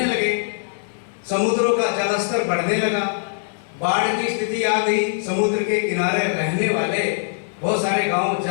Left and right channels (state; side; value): silent; right; digital silence